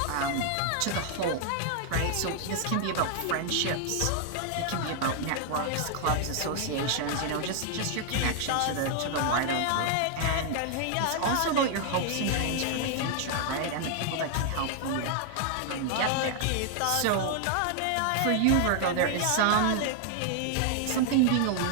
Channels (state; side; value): different; both; correlation 0.00